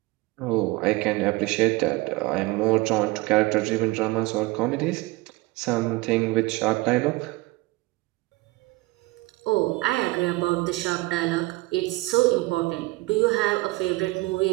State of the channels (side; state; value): left; quieter; 21.6 dB